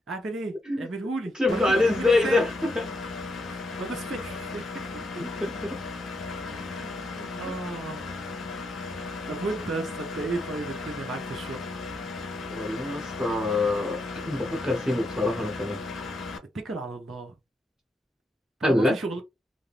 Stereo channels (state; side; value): normal; both; correlation 0.79